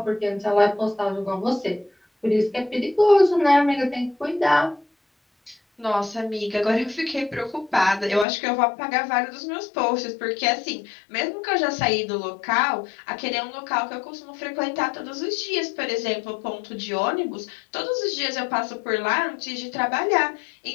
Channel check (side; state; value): right; drops out; at 8.2 s